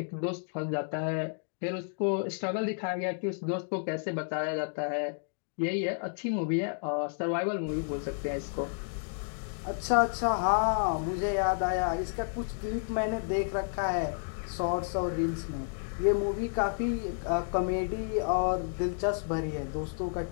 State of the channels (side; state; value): right; silent; digital silence